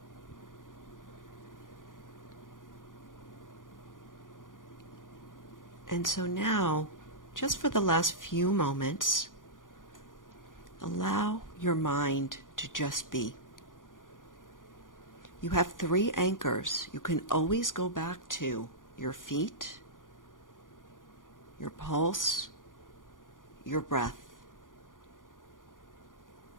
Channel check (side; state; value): right; late; 0.89 ms